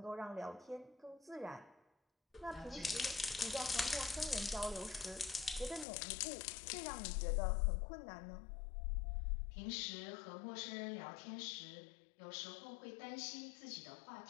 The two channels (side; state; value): right; drops out; at 5.9 s